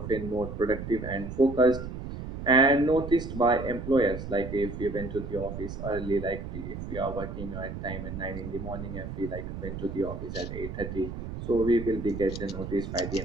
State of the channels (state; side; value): noise; right; rumble, 8 dB below the sound